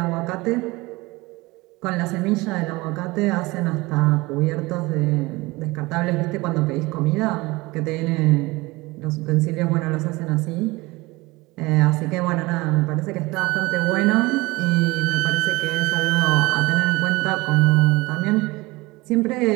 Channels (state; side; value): quieter; left; 22.1 dB